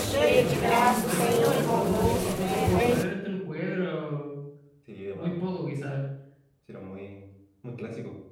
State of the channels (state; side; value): identical; both; correlation 1.00